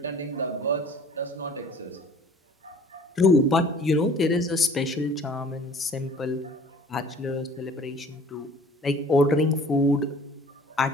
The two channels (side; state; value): both; normal; correlation 0.49